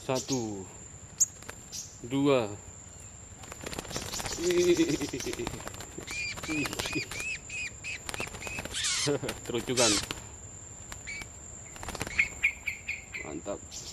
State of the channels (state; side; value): identical; both; correlation 1.00